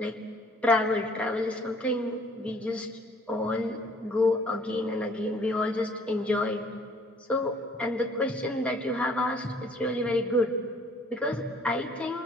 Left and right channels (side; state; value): both; normal; correlation 0.57